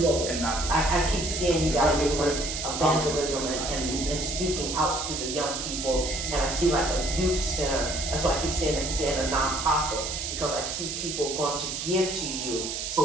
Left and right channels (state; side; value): noise; right; hiss, 4 dB below the sound